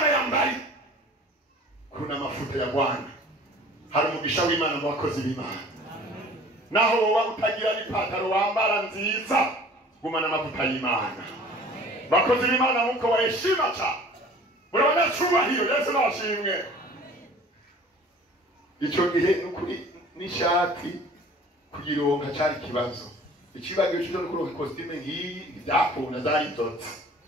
yambari kuna mafuta ya Bwana hari umugisha w'Imana mu bakozi b'Imana naho wowe utagira n'ipataro wambara nziza gumana amavuta y'Imana bakozi b'Imana muko waheshima cha urabona cyubahiro Yesu nashimwe icyo gihe n'ukuri n'ishati kugironka cyari kibazo ikibazo cyo kuronka costume ngiyi byakunda zari nzotse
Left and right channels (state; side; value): normal; both; correlation 0.47